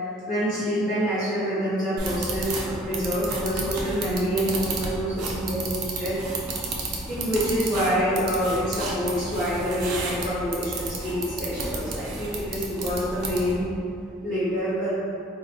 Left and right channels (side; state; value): both; normal; correlation 0.52